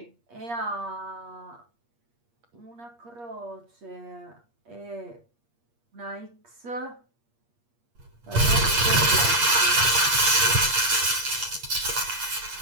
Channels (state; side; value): late; left; 8.5 ms